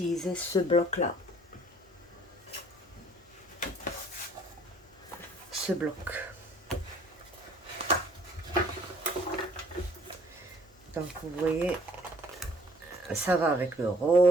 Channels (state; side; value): normal; both; correlation 0.58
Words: ce bloc là, ce bloc. Donc vous voyez, ça va avec le